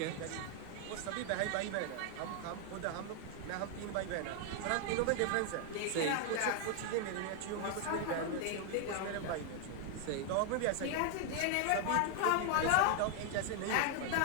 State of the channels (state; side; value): different; both; correlation 0.00